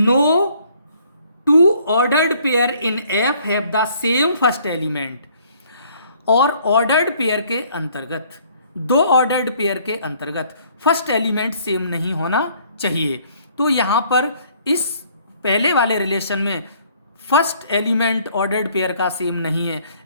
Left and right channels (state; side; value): inverted; both; correlation -0.61